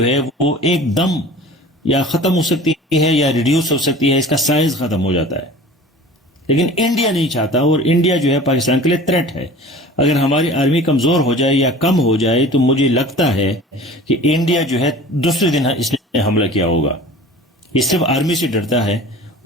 ہے وہ ایک دم یا ختم ہو سکتی ہے یا ریڈیوس ہو سکتی ہے، اس کا سائز ختم ہو جاتا ہے. لیکن انڈیا نہیں چاہتا، اور انڈیا جو ہے پاکستان کے لیے تھریٹ ہے. اگر ہماری آرمی کمزور ہو جائے یا کم ہو جائے تو مجھے لگتا ہے کہ انڈیا جو ہے دوسرے دن اس نے حملہ کیا ہوگا. یہ صرف آرمی سے ڈرتا ہے،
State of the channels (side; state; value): both; normal; correlation 0.42